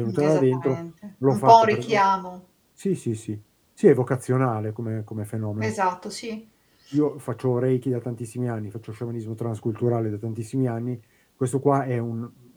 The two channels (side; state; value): both; identical; correlation 1.00